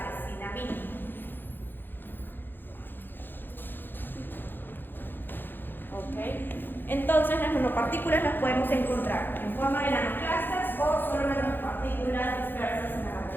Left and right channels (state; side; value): late; right; 0.097 ms